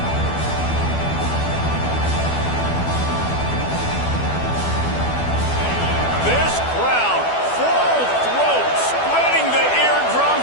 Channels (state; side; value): late; right; 12 ms